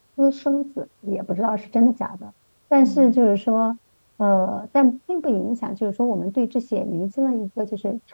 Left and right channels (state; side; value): inverted; both; correlation -1.00